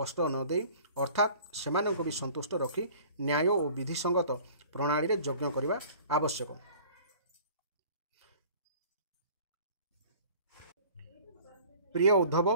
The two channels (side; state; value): both; inverted; correlation -0.48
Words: न दे अर्थात सेमानक भी संतुष्ट रखी न्याय और विधिसंगत प्रणाली रे यज्ञ करने आवश्यक। प्रिय